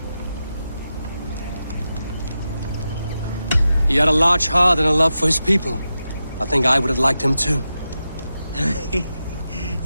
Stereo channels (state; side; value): inverted; both; correlation -0.90